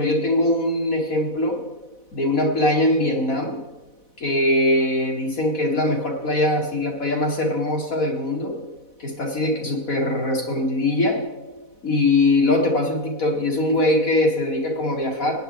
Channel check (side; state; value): right; late; 4.1 ms